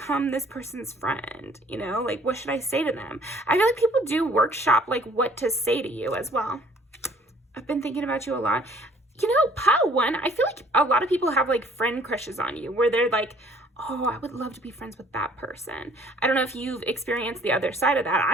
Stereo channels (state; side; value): normal; both; correlation 0.57